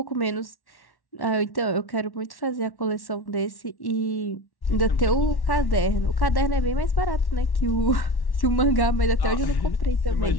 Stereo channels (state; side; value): late; right; 1.1 ms